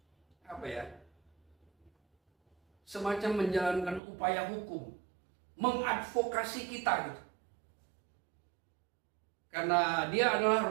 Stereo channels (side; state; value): left; drops out; at 4.0 s